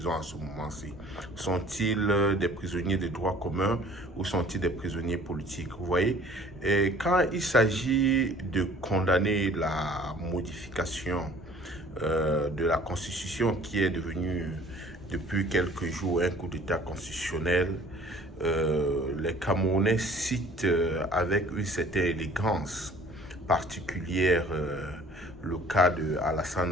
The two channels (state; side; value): normal; both; correlation 0.52